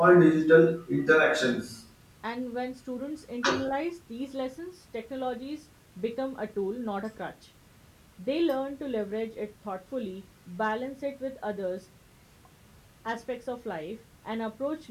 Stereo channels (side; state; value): both; identical; correlation 1.00